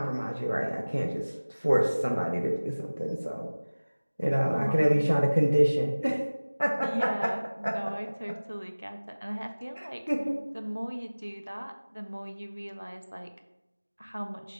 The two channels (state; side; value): inverted; both; correlation -1.00